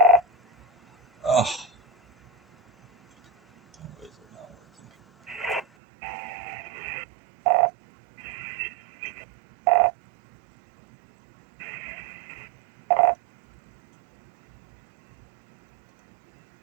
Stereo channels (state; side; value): drops out; left; at 5.7 s